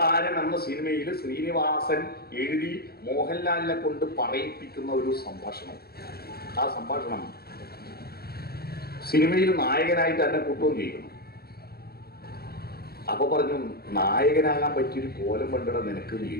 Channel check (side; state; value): right; late; 0.45 ms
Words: എന്ന സിനിമയിൽ ശ്രീനിവാസൻ എഴുതി മോഹൻലാലിനെ കൊണ്ട് പറയിപ്പിക്കുന്ന ഒരു സംഭാഷണം. ആ സംഭാഷണം സിനിമയിൽ നായകനായിട്ട് തന്നെ കൂട്ടുകയും ചെയ്യുന്നു. അപ്പൊ പറഞ്ഞു, നായകനാകാൻ പറ്റിയൊരു കോലം കണ്ടിട നിനക്ക്